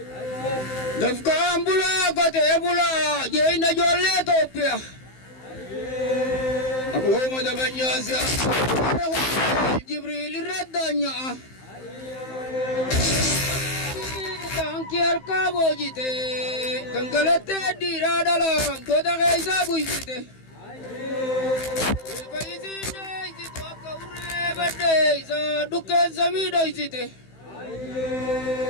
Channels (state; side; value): late; right; 15 ms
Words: dafkan bula kote bula jeyna jolle topia aku madabanya sia jibril radanya tangkiar kabojite tanggalate diradala kota kaisa buisite paisine itu akaure bade sa dukan samido isite